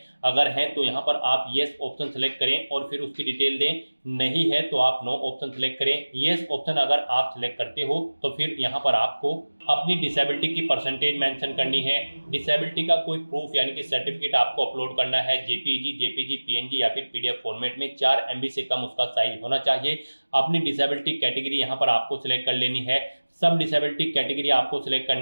अगर हैं तो यहाँ पर आप येस ऑप्शन सेलेक्ट करें और फिर उसकी डिटेल दें, नहीं है तो आप नो ऑप्शन सेलेक्ट करें। येस ऑप्शन अगर आप सिलेक्ट करते हो तो फिर यहाँ पर आपको अपनी डिसेबिलिटी की परसेंटेज मेंशन करनी है। डिसेबिलिटी का कोई प्रूफ यानी कि सर्टिफिकेट आपको अपलोड करना है। जेपीजी, जेपीजी, पीएनजी या फिर पीडीएफ फॉर्मेट में 4 MB से कम उसका साइज होना चाहिए। अपनी डिसेबिलिटी कैटेगरी यहाँ पर आपको सिलेक्ट कर लेनी है। सब डिसेबिलिटी कैटेगरी आपको सिलेक्ट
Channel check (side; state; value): both; inverted; correlation -1.00